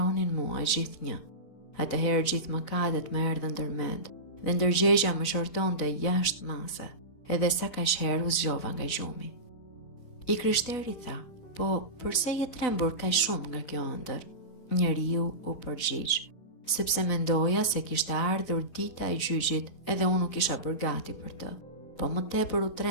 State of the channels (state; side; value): late; right; 4.0 ms